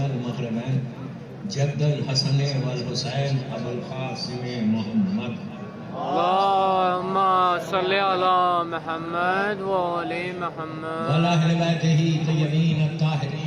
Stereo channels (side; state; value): both; identical; correlation 1.00